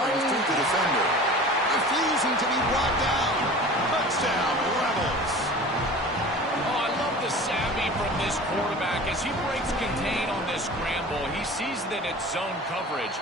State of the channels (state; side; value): normal; both; correlation 0.39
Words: through the defender. Refusing to be brought down. Touchdown, Rebels. Oh, I love the savvy from this quarterback. As he breaks contain on this scramble, he sees that it's zone coverage.